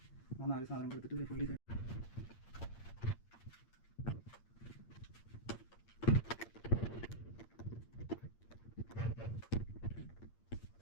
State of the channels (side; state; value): right; late; 8.7 ms